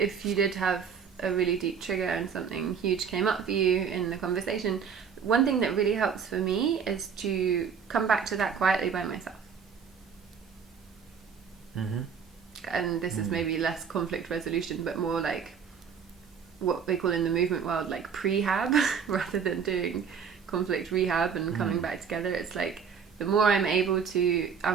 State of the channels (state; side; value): quieter; left; 6.7 dB